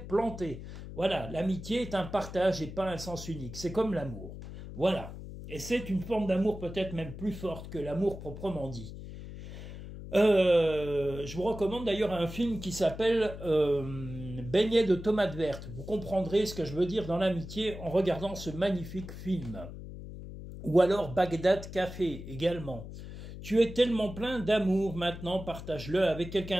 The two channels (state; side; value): noise; left; hum, 11 dB below the sound